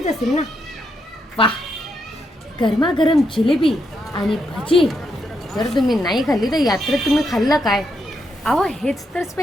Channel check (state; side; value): normal; both; correlation 0.80